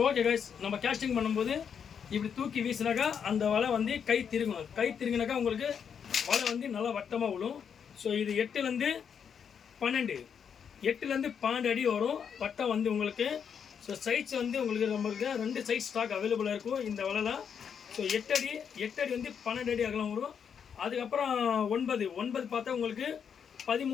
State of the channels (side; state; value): right; quieter; 7.3 dB